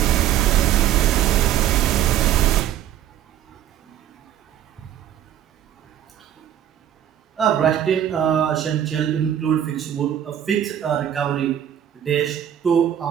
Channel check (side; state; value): left; quieter; 10.6 dB